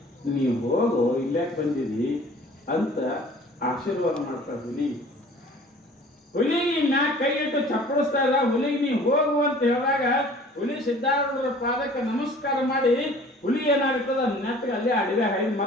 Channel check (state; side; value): normal; both; correlation 0.49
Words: ನೀವು ಹೋಗು, ಇಲ್ಲಾಕೆ ಬಂದಿದಿ ಅಂತ ಆಶೀರ್ವಾದ ಮಾಡ್ತಾರ. ಹುಲಿಗೆ ಮ್ಯಾಗ ಕೈ ಇಟ್ಟು ಚಪ್ಪಡಿಸ್ತಾ ಇದ್ದ. ಹುಲಿಗೆ ನೀವು ಹೋಗು ಅಂತ ಹೇಳಿದಾಗ ಹುಲಿ ಸಿದ್ಧಾರೂಢರ ಪಾದಕ್ಕೆ ನಮಸ್ಕಾರ ಮಾಡಿ ಹುಲಿ ಏನಾಗ್ತದ ನೆಟ್ಟಗೆ ಅಲ್ಲೇ ಅಡಿಗೆ ಹಾಯ್ದು